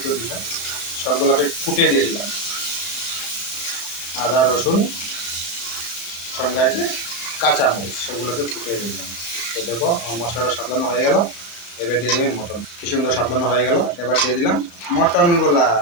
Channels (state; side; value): late; right; 34 ms